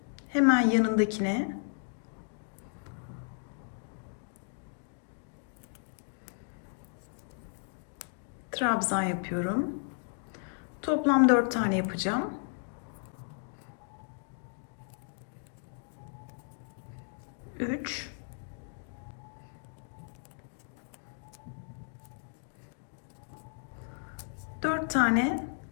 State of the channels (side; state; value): right; silent; digital silence